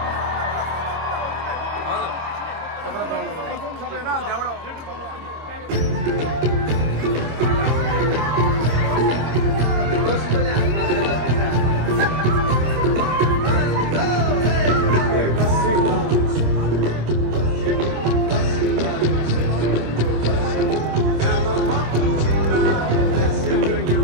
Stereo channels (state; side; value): late; left; 26 ms